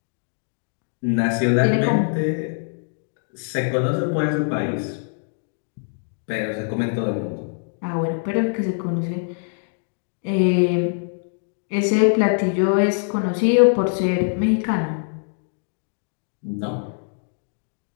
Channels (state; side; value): silent; right; 63 dB below the other